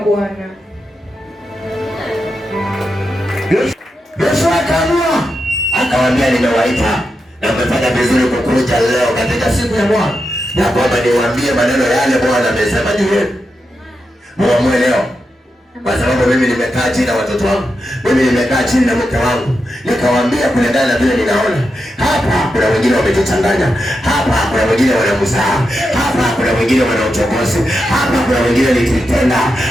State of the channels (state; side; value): normal; both; correlation 0.87